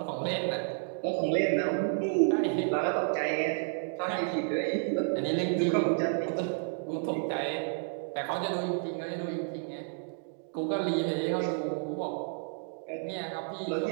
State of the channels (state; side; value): silent; left; digital silence